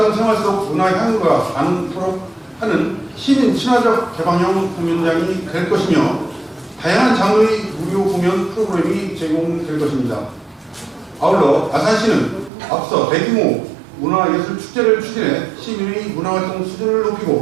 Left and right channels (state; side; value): drops out; left; at 12.5 s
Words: 속 문화 향유가 나누도록 하는 시민 친화적 개방형 공연장이 될 것이며 다양한 장르의 무료 공연 프로그램이 제공될 것입니다. 아울러 아산시는 앞서 대규모 문화예술 축제를 추진해 시민의 문화활동 수준을